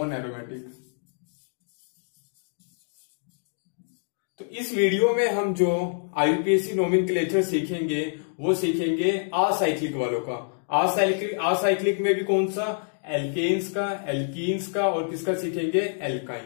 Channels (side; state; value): right; silent; digital silence